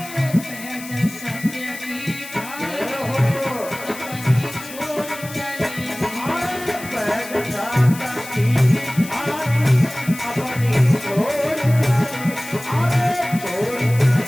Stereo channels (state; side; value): noise; left; hiss, 14 dB below the sound